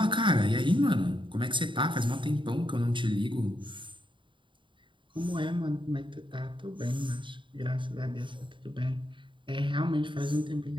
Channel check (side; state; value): left; late; 0.24 ms